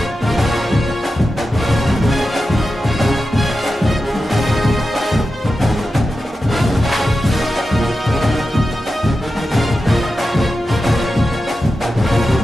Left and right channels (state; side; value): normal; both; correlation 0.92